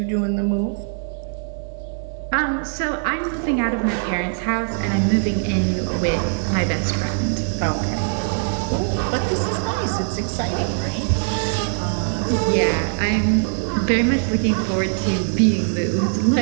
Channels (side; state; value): left; silent; digital silence